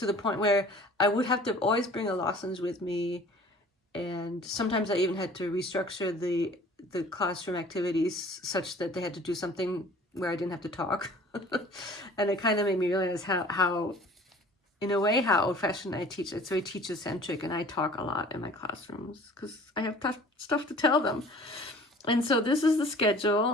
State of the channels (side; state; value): both; normal; correlation 0.48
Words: the point where I would have to always bring a lessons with me. And sometimes I even had to restructure the classroom activities such that they had to do something where I didn't have to talk. And it kind of made me realize how in a way, how old-fashioned I teach. It's very teacher-centric, and I talk a lot in my classrooms because I have stuff to tell them. And so this is the